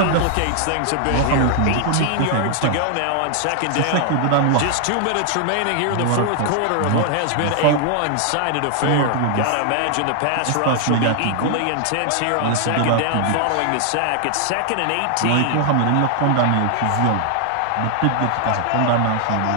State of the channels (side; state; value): both; different; correlation 0.00